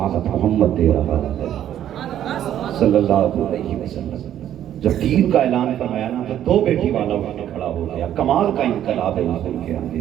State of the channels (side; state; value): left; quieter; 11.1 dB